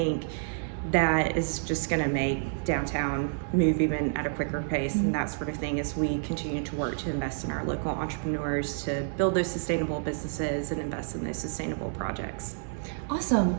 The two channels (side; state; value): left; silent; digital silence